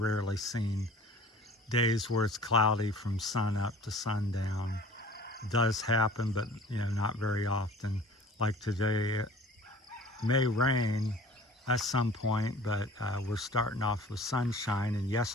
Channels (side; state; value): both; normal; correlation 0.46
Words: seen days where it's cloudy from sun up to sundown. It does happen, but not very often. Like today, it may rain at some point, but we're starting off with sunshine. And